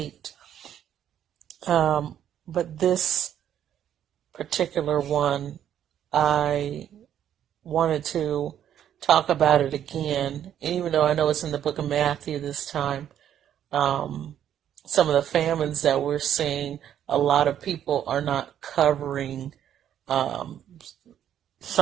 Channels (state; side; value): quieter; left; 10.2 dB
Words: But this particular one, I wanted to talk about it again. And even though I know it's in the book of Matthew this time, some of the famines that we're seeing, a lot of people are not covering some